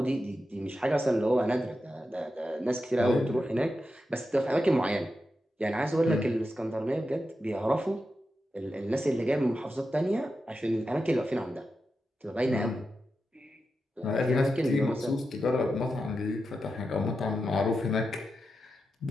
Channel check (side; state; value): both; normal; correlation 0.89